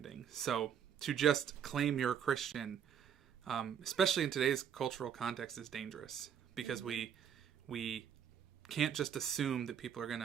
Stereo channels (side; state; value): left; quieter; 8.4 dB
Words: So to just claim you're a Christian, especially in today's cultural context, is dangerous, because we can't just assume that people are going